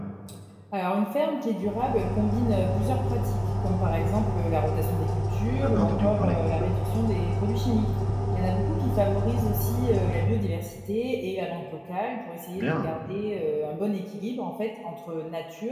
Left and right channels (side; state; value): both; identical; correlation 1.00